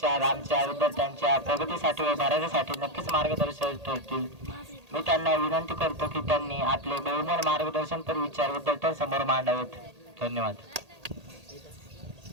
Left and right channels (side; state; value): left; late; 1.8 ms